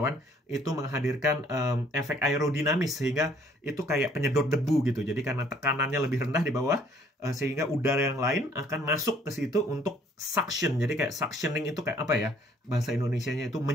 itu menghadirkan efek aerodinamis sehingga itu kayak penyedot debu gitu. Jadi karena tekanannya lebih rendah di bawah, sehingga udara yang lain akan masuk ke situ untuk suction. Jadi kayak suctioning itu kayak apa ya? Bahasa Indonesianya itu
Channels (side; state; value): both; normal; correlation 0.61